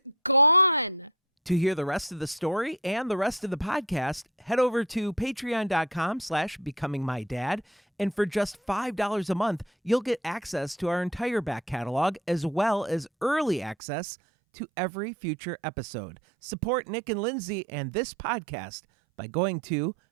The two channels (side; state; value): left; drops out; at 13.8 s